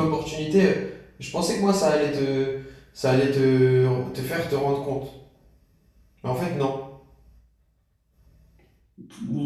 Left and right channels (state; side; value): identical; both; correlation 1.00